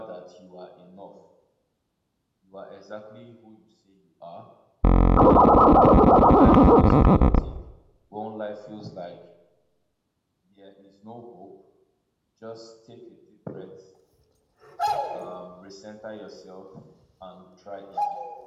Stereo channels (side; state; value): both; identical; correlation 1.00